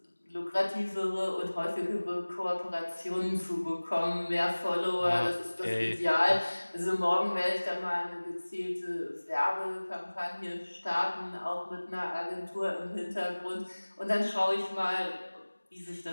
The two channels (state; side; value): inverted; both; correlation -1.00